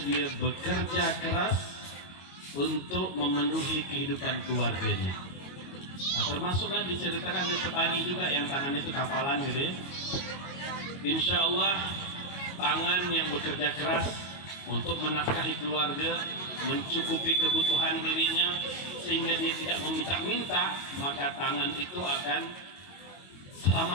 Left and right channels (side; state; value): right; late; 22 ms